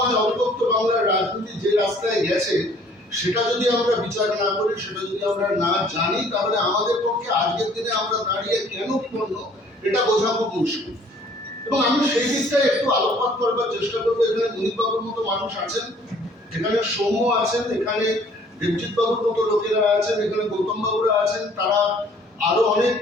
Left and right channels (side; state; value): both; normal; correlation 0.57